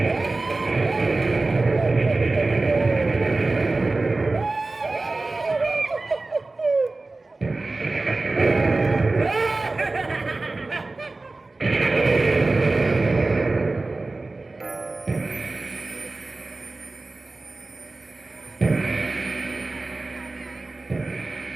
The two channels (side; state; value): left; quieter; 3.3 dB